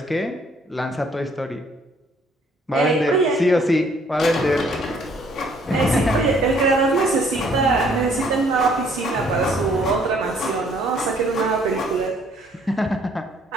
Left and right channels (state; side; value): normal; both; correlation 0.62